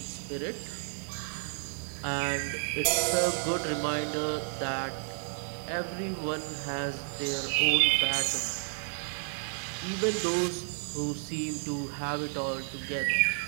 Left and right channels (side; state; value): left; silent; 57 dB below the other